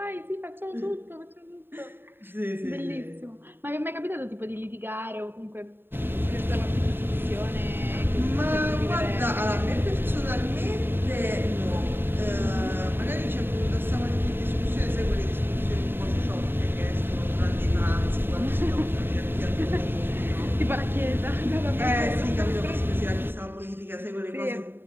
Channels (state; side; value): late; left; 0.10 ms